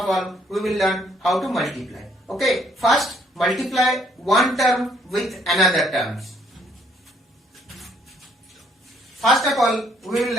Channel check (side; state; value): both; normal; correlation 0.66